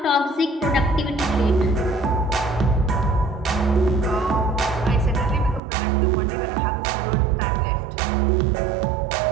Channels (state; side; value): drops out; left; at 5.6 s